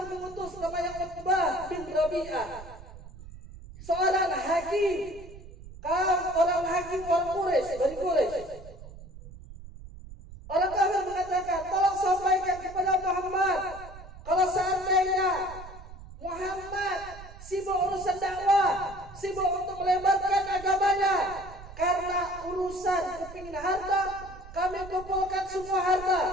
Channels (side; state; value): right; noise; rumble, 16 dB below the sound